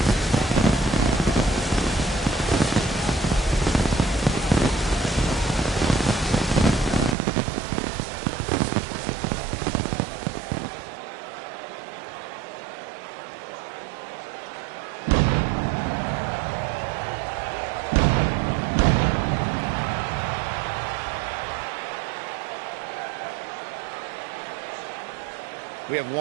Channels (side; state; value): left; drops out; at 7.2 s